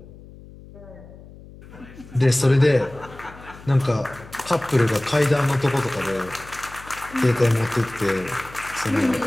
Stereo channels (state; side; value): noise; left; hum, 19 dB below the sound